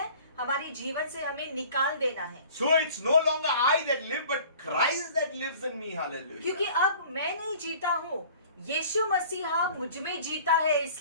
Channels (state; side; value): inverted; both; correlation -0.48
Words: हमारे जीवन से हमें निकाल देना है। So it's no longer I that live, but Christ that lives in me. Hallelujah. क्योंकि अब मैं नहीं जीता हूँ, यीशु मसीहा मुझ में जीता है,